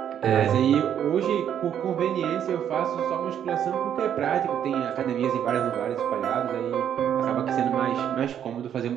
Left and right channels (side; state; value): left; quieter; 9.4 dB